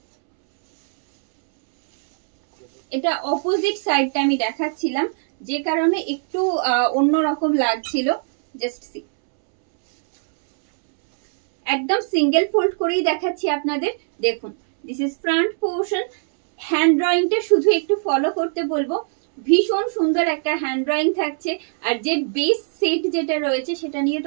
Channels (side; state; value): left; silent; 65 dB below the other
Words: এটা অপোজিট সাইডটা আমি দেখাচ্ছিলাম, যে কারণে একটু অন্যরকম লাগছিল. Just see, একদম সিঙ্গেল ফোল্ড করেই দেখাচ্ছি আপনাদের. দেখুন, this is front portion. Hand ড্রয়িংটা শুধু একটু ফলো করতে বলবো. ভীষণ সুন্দর একটা হ্যান্ড ড্রয়িং থাকছে. আর যে বেস সেট যেটা রয়েছে সেটা নিয়ে